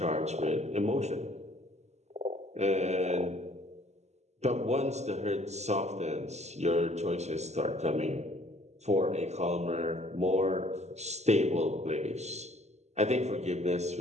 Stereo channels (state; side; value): late; left; 0.32 ms